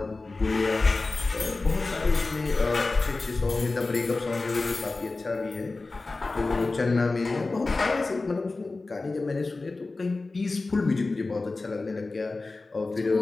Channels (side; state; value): right; quieter; 3.5 dB